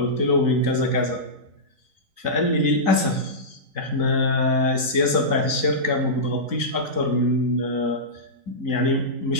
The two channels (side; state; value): left; late; 3.9 ms